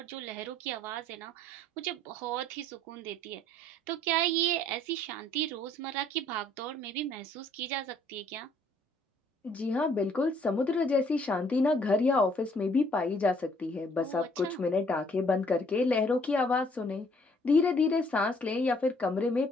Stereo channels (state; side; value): normal; both; correlation 0.63